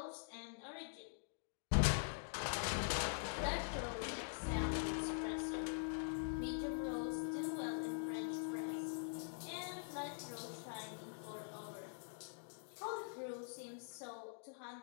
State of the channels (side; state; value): right; silent; digital silence